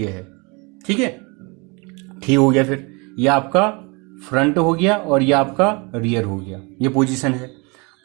है। ठीक है, ठीक हो गया। फिर ये आपका फ्रंट हो गया और ये आपका रियर हो गया, ये पोजीशन है।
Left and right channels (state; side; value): quieter; left; 29.3 dB